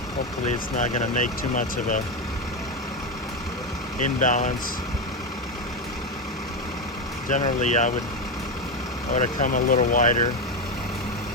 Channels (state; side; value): normal; both; correlation 0.11